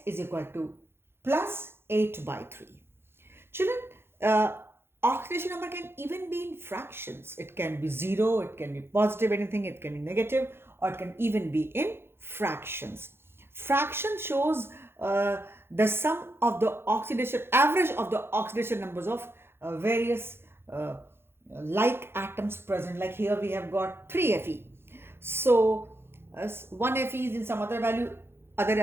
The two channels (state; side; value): late; left; 0.11 ms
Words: is equal to plus 8 by 3. Children, oxidation number can even be in fractions. It can be 0, it can be positive anything, it can be negative, or it can even be in fractions. Fraction shows the sum of the oxidation, average of the oxidation numbers of various like atoms present. Like here we have got 3 Fe. So one Fe is in some other value, other